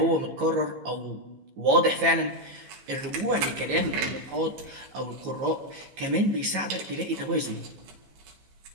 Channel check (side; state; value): left; late; 15 ms